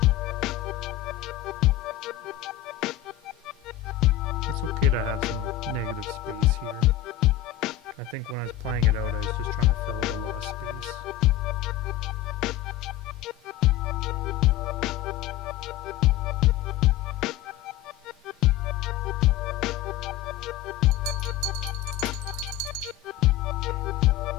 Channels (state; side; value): quieter; right; 12.4 dB